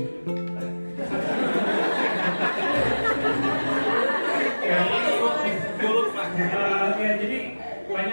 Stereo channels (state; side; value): inverted; both; correlation -1.00